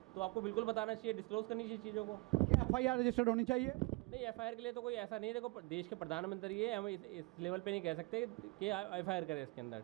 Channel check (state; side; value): quieter; left; 25.4 dB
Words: तो आपको बिल्कुल बताना चाहिए, डिस्क्लोज करनी चाहिए चीज़ों को। क्या एफआईआर रजिस्टर्ड होनी चाहिए? नहीं, एफआईआर के लिए तो कोई ऐसा नहीं है। देखो देश के प्रधानमंत्री है, हम इस लेवल पे नहीं कह सकते कि एफआईआर करें इसके अंदर,